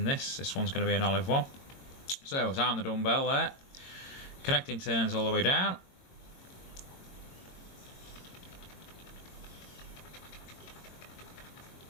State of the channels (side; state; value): right; late; 22 ms